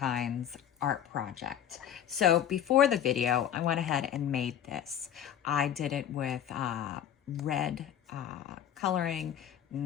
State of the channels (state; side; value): quieter; right; 10.0 dB